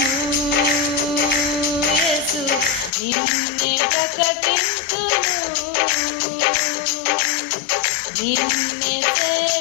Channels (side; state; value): right; drops out; at 2.9 s